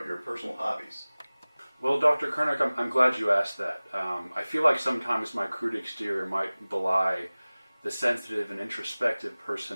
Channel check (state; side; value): inverted; both; correlation -0.99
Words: your personal hobbies? Well, Dr. Koenig, I'm glad you asked that. I feel like sometimes my crude exterior might belie the sensitive and introspective